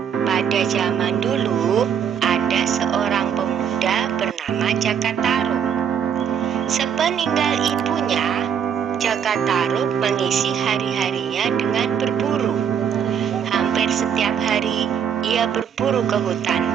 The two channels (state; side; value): quieter; left; 8.0 dB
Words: Pada zaman dulu ada seorang pemuda bernama Jakatarub. Sepeninggal ibunya, Jakatarub mengisi hari-harinya dengan berburu. Hampir setiap hari ia berburu ke hutan.